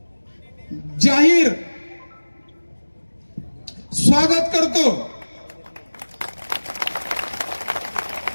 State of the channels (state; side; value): inverted; both; correlation -1.00